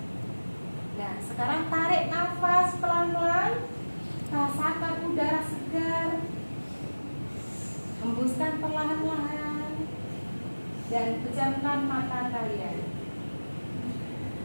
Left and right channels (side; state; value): both; inverted; correlation -1.00